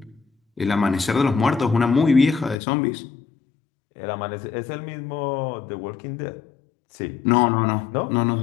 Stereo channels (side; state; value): right; drops out; at 2.6 s